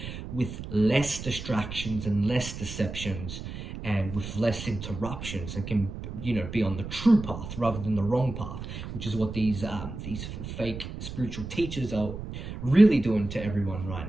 with less distractions and less deceptions and with less interruptions, and can be on the true path rather than the wrong path, which is what these fake spiritual teachers are really doing to everyone right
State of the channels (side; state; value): right; noise; rumble, 8 dB below the sound